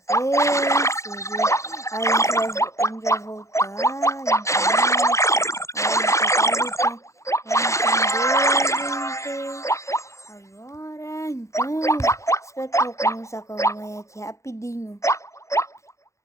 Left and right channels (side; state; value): right; late; 0.15 ms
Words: Aí a gente vai voltar. Agora, então, espero que eu vou começar com a mamãe aqui rapidinho.